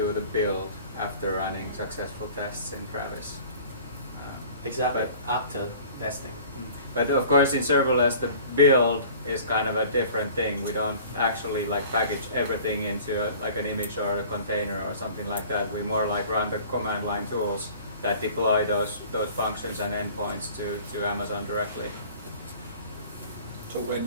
the build after running successful tests in Travis? Exactly, after testing. But of course, in serverless, the build is kind of a different thing. We don't actually like package everything into like an image or a container or something like that. We more like run the command line tools that deploy those functions and endpoints to Amazon directly. So when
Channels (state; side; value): inverted; both; correlation -0.47